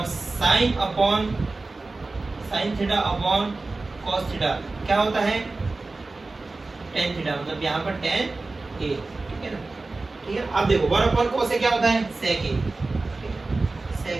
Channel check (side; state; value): left; quieter; 3.4 dB